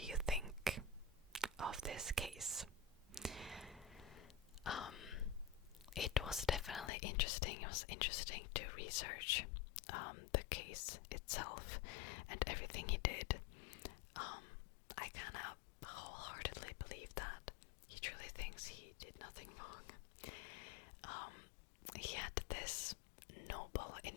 think of this case? It was definitely interesting. It was interesting to research the case itself and everything he did. I kind of wholeheartedly believe that he truly thinks he did nothing wrong. He had this noble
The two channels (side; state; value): right; drops out; at 6.9 s